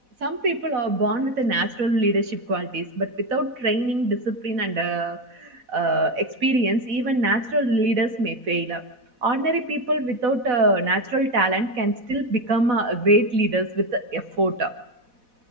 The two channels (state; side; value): late; left; 4.1 ms